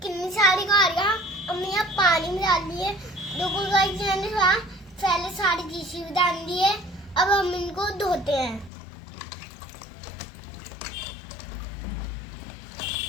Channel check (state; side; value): drops out; right; at 8.7 s